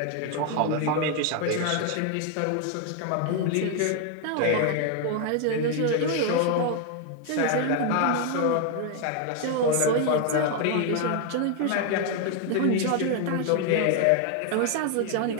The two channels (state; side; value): different; both; correlation 0.01